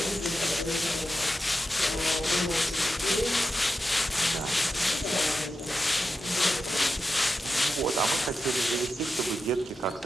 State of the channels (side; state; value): both; normal; correlation 0.90